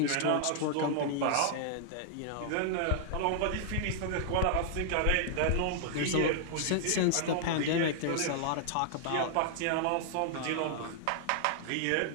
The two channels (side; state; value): both; different; correlation -0.01